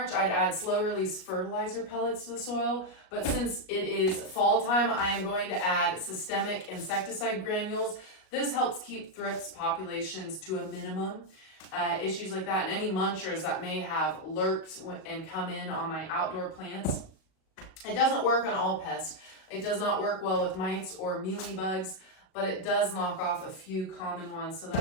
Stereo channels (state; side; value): late; right; 38 ms